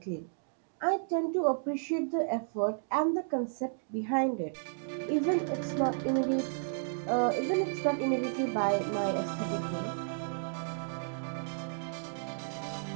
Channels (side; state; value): left; silent; digital silence